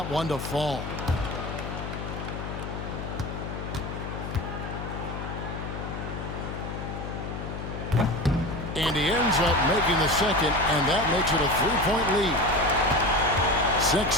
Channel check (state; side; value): noise; left; hum, 6 dB below the sound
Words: one to fall. And he ends up making the second, and that makes it a 3-point lead. 6